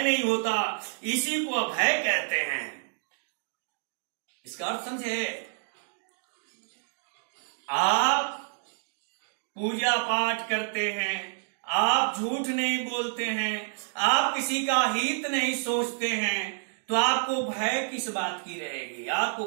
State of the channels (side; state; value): left; silent; digital silence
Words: नहीं होता, इसी को अभय कहते हैं। इसका अर्थ समझे? आप पूजा पाठ करते हैं, आप झूठ नहीं बोलते हैं, आप किसी का हित नहीं सोचते हैं, तो आपको भय किस बात की रहेगी?